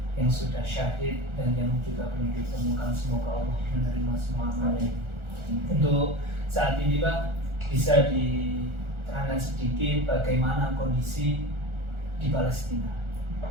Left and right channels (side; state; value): left; late; 1.4 ms